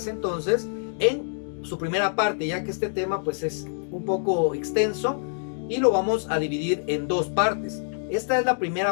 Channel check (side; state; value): right; silent; digital silence